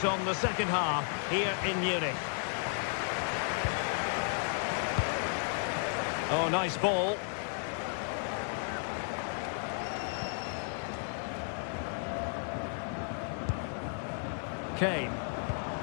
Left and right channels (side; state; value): right; silent; 55 dB below the other